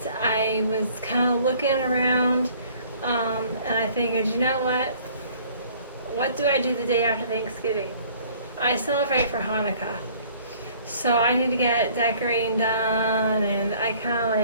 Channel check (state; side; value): inverted; both; correlation -0.55